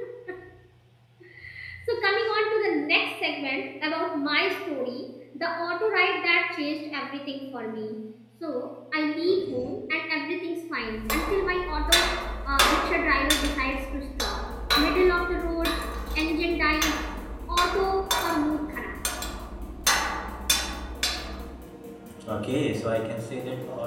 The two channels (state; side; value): identical; both; correlation 1.00